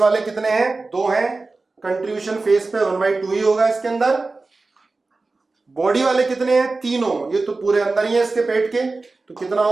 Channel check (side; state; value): left; quieter; 3.6 dB